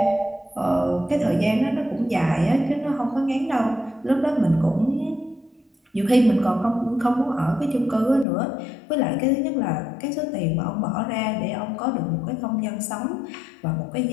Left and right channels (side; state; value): right; drops out; at 8.2 s